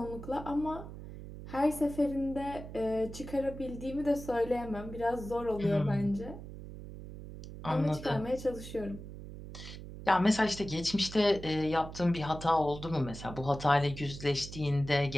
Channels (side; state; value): right; noise; hum, 12 dB below the sound